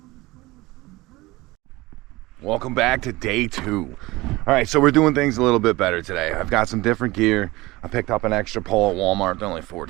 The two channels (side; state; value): left; quieter; 20.6 dB